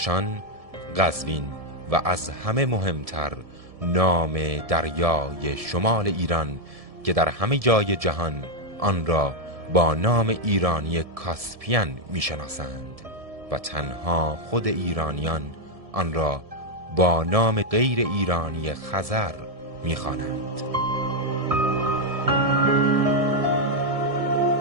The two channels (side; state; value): left; late; 1.7 ms